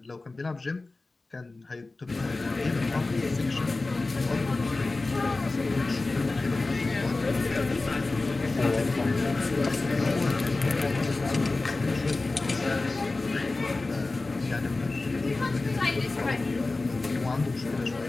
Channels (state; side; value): quieter; right; 3.3 dB